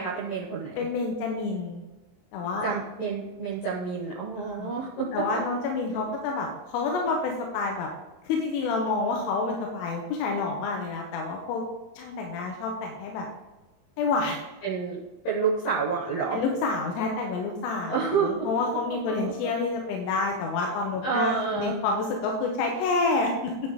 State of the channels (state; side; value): late; right; 22 ms